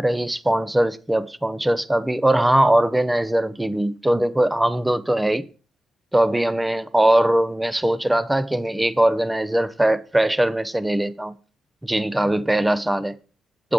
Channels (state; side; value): normal; both; correlation 0.98